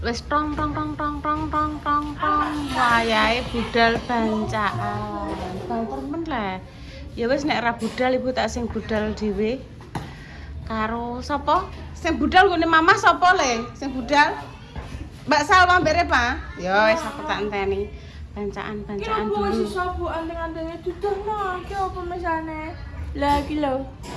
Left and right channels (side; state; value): both; identical; correlation 1.00